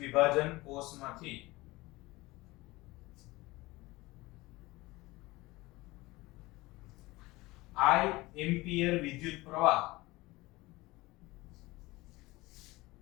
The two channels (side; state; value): right; quieter; 20.8 dB